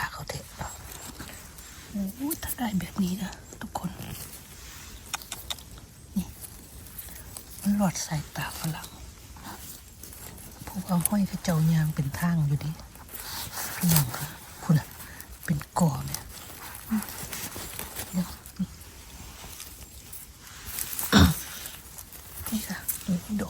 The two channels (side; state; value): both; identical; correlation 1.00